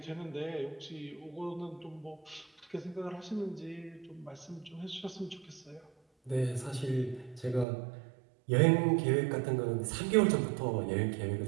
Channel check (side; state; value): left; drops out; at 7.7 s